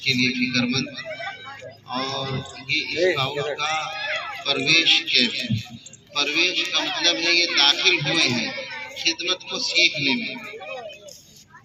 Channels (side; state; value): both; identical; correlation 1.00